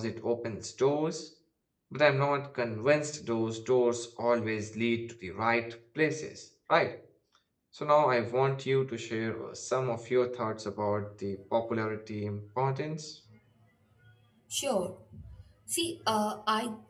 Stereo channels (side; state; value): both; identical; correlation 1.00